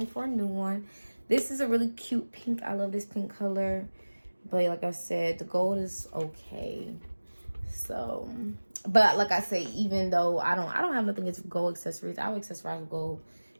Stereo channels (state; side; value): inverted; both; correlation -1.00